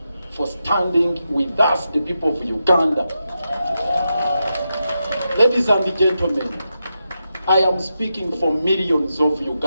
for standing with us, the people of Uganda. Ladies and gentlemen, I am speaking for millions of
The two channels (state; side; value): inverted; both; correlation -0.87